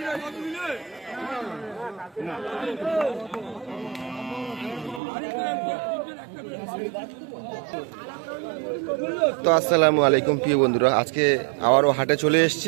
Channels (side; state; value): left; drops out; at 5.0 s